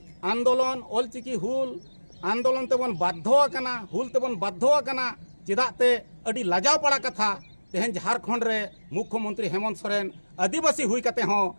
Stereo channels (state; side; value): inverted; both; correlation -1.00